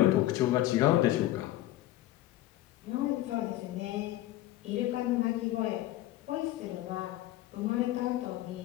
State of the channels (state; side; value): quieter; right; 15.3 dB